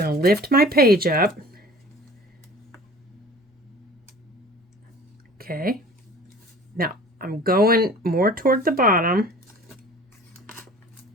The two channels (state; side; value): normal; both; correlation 0.45